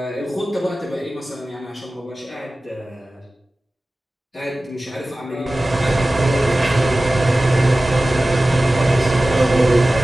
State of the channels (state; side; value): normal; both; correlation 0.97